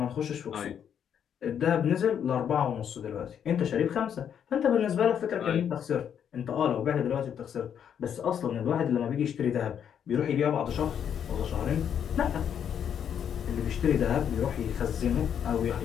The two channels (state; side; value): quieter; right; 8.6 dB